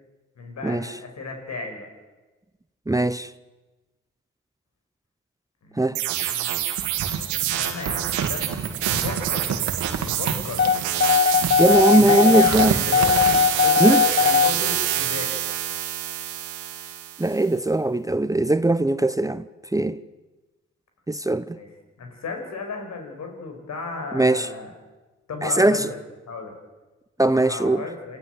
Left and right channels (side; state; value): both; normal; correlation 0.29